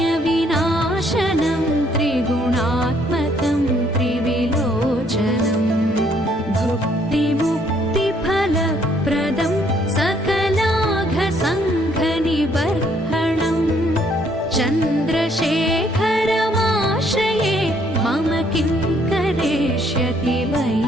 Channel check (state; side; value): normal; both; correlation 0.66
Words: त्रिगुणात्मकं त्रिविलोचनम् भुक्तिमुक्तिफलप्रदं सकलाघसङ्घनिबर्हणम् चन्द्रशेखरमाश्रये मम किं करिष्यति